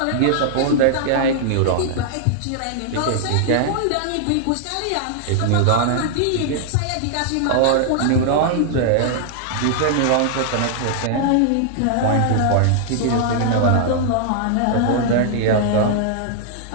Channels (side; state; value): both; different; correlation -0.01